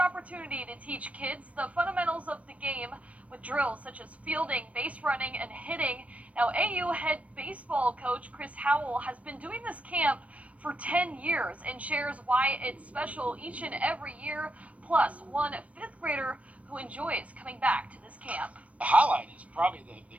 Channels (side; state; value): left; late; 0.065 ms